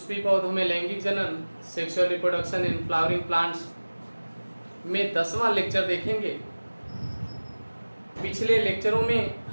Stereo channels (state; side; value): inverted; both; correlation -1.00